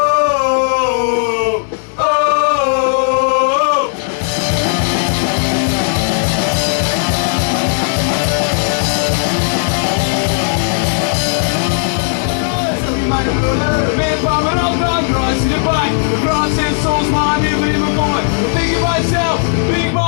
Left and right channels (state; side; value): silent; right; 70 dB below the other